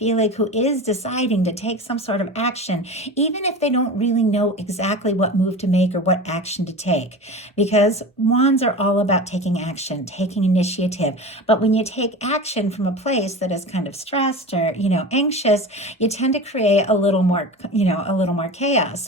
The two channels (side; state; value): both; normal; correlation 0.31